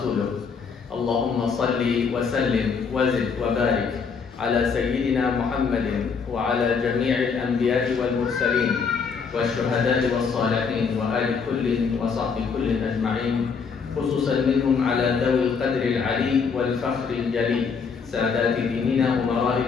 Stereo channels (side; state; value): right; quieter; 5.7 dB